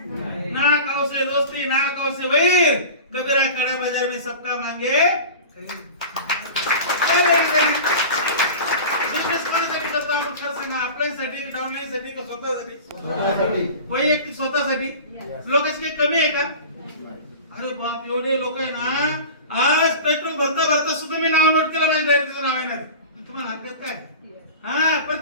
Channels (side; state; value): both; inverted; correlation -0.35